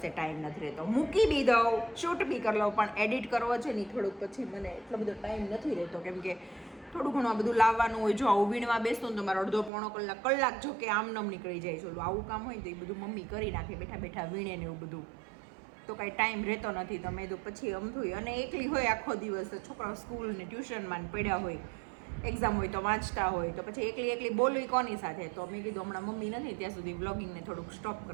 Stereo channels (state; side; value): drops out; left; at 9.7 s